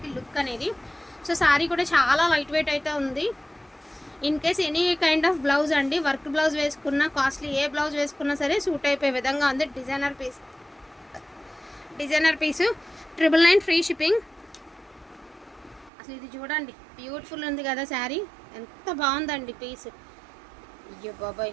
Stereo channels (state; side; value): drops out; left; at 15.9 s